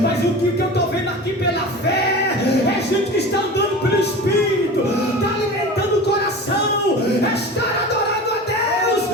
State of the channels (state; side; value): normal; both; correlation 0.33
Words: Mas o que eu estou vendo aqui pela fé é gente que está andando pelo Espírito, está alimentando o coração, está adorando a Deus,